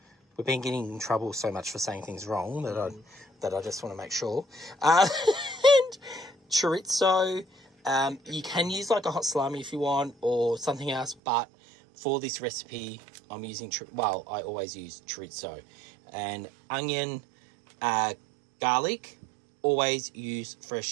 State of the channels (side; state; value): left; drops out; at 11.2 s